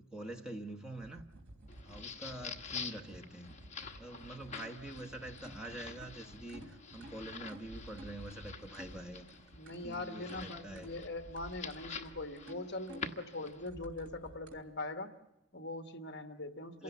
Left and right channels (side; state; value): both; normal; correlation 0.13